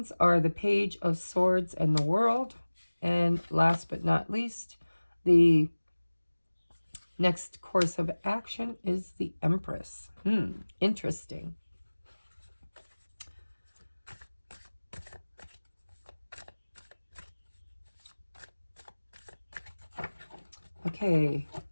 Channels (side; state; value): both; inverted; correlation -1.00